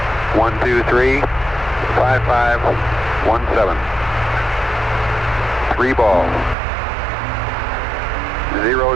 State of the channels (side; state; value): left; drops out; at 6.6 s